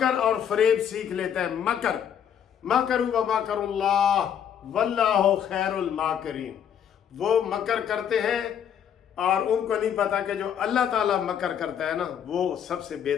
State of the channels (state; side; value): quieter; right; 8.8 dB